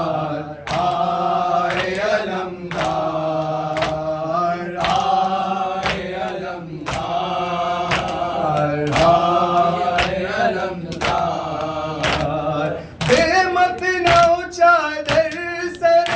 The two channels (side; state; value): both; identical; correlation 1.00